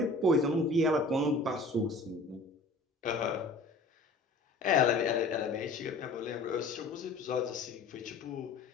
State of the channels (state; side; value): quieter; right; 3.1 dB